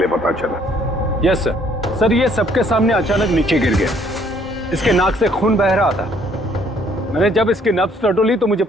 पता चला? Yes sir. सर, ये सबके सामने अचानक नीचे गिर गया। इसके नाक से खून बह रहा था। मैंने जब इसकी नब्ज टटोली तो मुझे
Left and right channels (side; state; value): both; normal; correlation 0.63